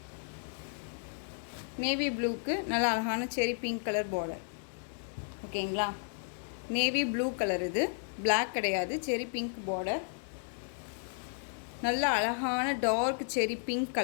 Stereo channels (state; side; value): silent; right; digital silence